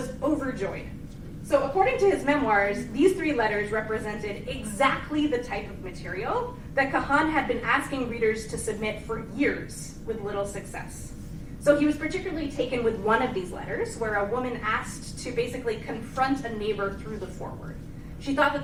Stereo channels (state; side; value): identical; both; correlation 1.00